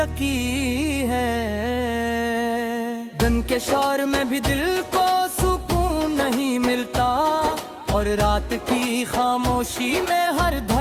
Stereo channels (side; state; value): both; identical; correlation 1.00